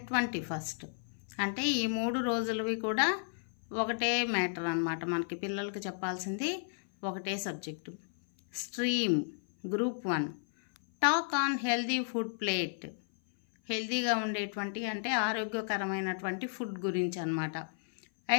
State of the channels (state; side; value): silent; right; 56 dB below the other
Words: 21st. అంటే ఈ 3 రోజులవి కూడా ఒకటే మ్యాటర్ అన్నమాట. మనకి పిల్లలకి చెప్పాల్సింది ఒకటే subject. Stream group 1 talk on healthy food plate. హెల్దీగా ఉండేటువంటి అంటే ఆరోగ్యకరమైనటువంటి ఫుడ్ గురించి అన్నమాట.